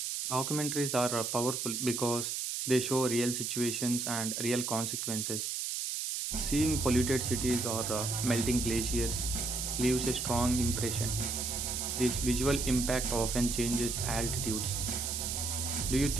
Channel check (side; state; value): right; noise; hiss, 2 dB below the sound